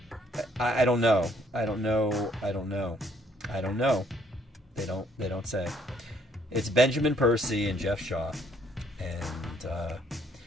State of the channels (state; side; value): normal; both; correlation 0.66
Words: don't know. I don't know. They don't say. It's Benjamin Percy and Jeff Shaw. And,